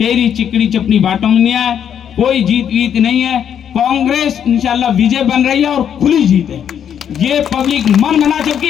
चिकड़ी चपनी बाटों में नहीं आए, कोई जीत वीत नहीं है। कांग्रेस इंशाल्लाह विजय बन रही है और खुली जीत है, ये पब्लिक मन बना चुकी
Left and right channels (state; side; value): quieter; right; 8.8 dB